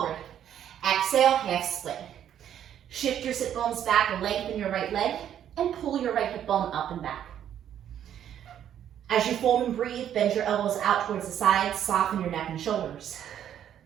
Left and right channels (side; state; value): left; quieter; 10.1 dB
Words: Exhale, half split. Shift your sit bones back and lengthen your right leg and pull your right hip bone up and back. As you fold and breathe, bend your elbows out towards the sides, soften your neck and shoulders.